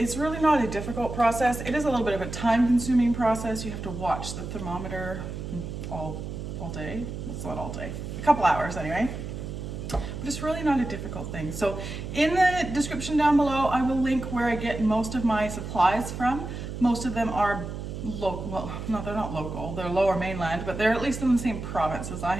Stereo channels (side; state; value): right; noise; hum, 7 dB below the sound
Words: really not a difficult process. It is a little bit of a time-consuming process. You have to watch the thermometer all day. It's not all day. A couple hours anyway. But it's really not a difficult thing. So in the description down below, I will link where I get most of my supplies from. Most of them are local. Well, no, they're not local. They're lower mainland, but they're at least in the same province as I